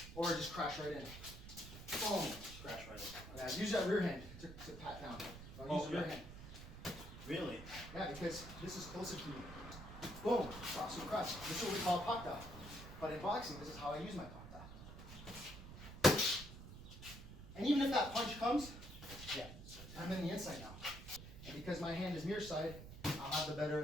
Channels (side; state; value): right; noise; rumble, 12 dB below the sound